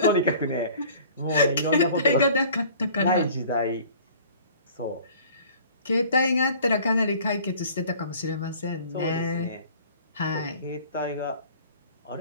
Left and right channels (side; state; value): both; inverted; correlation -0.49